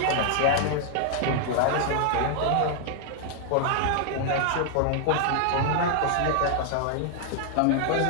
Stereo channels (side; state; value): both; different; correlation 0.00